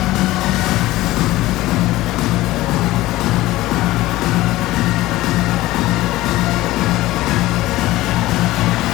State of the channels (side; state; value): right; quieter; 17.3 dB